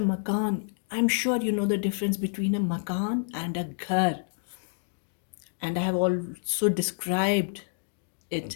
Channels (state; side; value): silent; right; digital silence